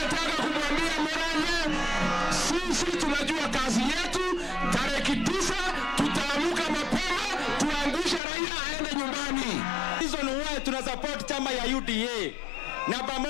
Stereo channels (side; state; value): right; drops out; at 8.2 s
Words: kumwambia Murang'a, sisi tunajua kazi yetu, tarehe 9 tutaamuka mapema, tuangushe Raila aende nyumbani. Reason why tuna support chama ya UDA na